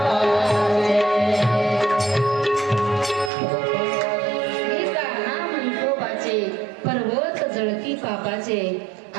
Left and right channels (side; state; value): left; drops out; at 3.3 s